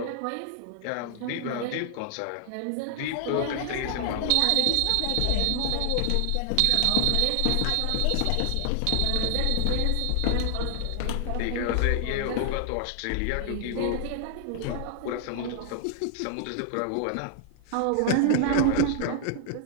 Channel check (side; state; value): both; different; correlation 0.00